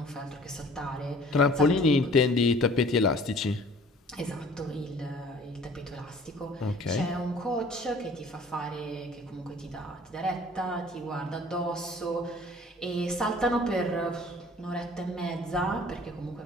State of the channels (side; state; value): both; normal; correlation 0.50